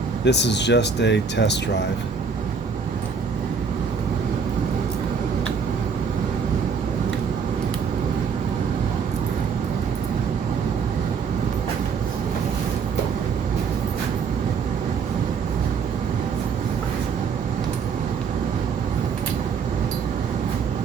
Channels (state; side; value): quieter; left; 5.8 dB